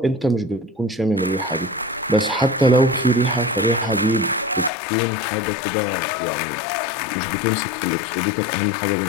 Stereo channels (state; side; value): drops out; right; at 4.7 s